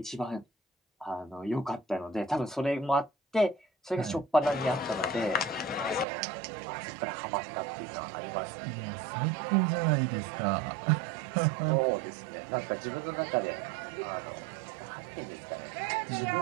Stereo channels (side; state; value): left; drops out; at 6.1 s